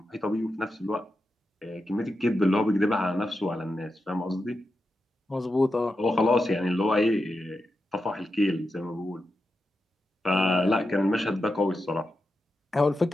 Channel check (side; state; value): both; normal; correlation 0.88